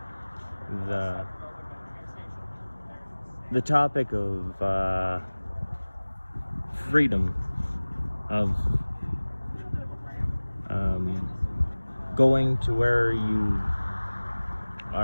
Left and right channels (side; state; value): both; inverted; correlation -1.00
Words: the topic of freedom, of going to where you